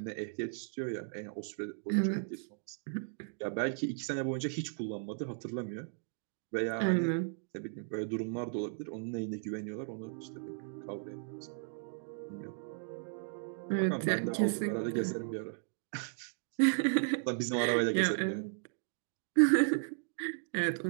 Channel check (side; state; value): left; silent; digital silence